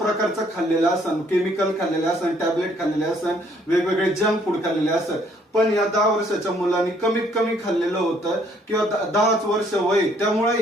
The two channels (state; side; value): normal; both; correlation 0.65